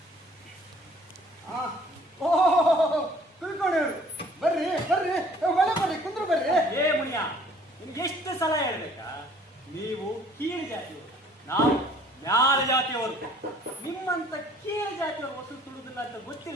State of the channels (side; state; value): both; normal; correlation 0.56